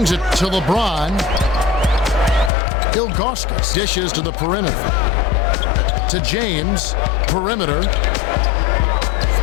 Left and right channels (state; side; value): drops out; right; at 2.5 s